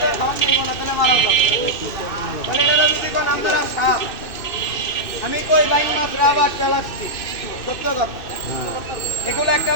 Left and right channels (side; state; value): right; late; 2.6 ms